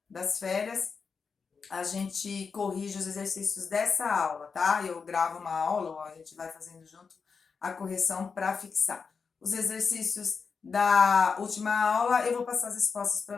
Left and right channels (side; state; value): right; quieter; 5.4 dB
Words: das férias, a gente corrige os exercícios dessa aula, tá? Eu gravo uma aula, ou a gente vai fazendo junto a correção para fixar. Os exercícios da última aula, eu vou passar as respostas